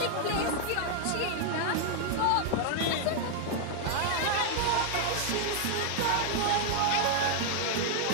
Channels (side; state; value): both; different; correlation 0.00